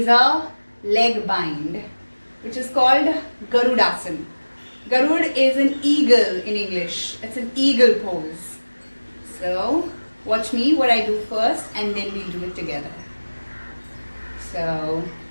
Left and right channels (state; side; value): inverted; both; correlation -1.00